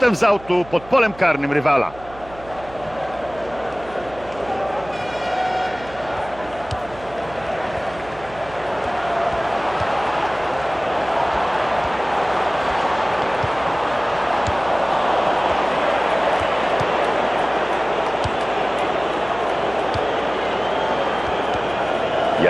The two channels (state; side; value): noise; right; hum, 19 dB below the sound